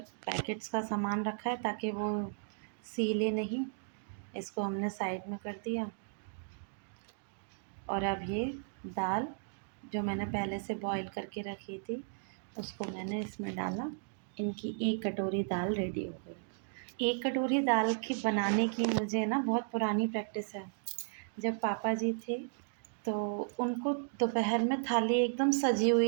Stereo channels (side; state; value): left; silent; digital silence